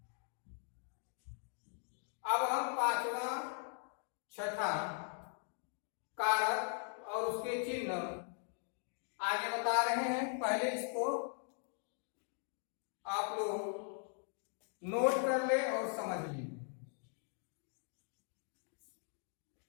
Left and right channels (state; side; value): silent; right; 51 dB below the other